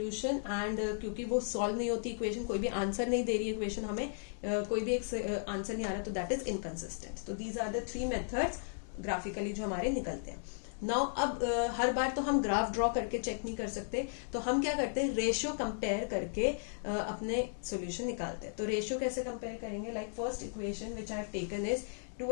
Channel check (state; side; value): silent; right; digital silence